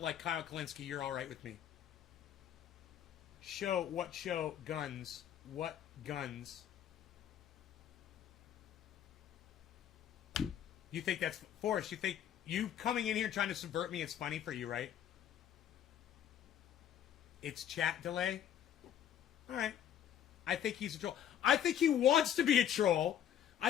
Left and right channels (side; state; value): right; quieter; 10.1 dB